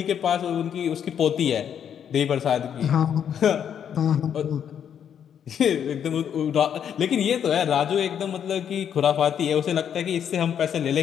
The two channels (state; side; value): quieter; right; 8.7 dB